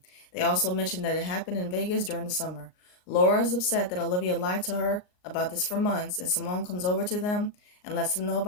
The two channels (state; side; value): late; right; 39 ms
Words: They also mention that it happened in Vegas during the summer. Laura is upset that Olivia lied to her about this for months, and Simone comes over to them and lets them know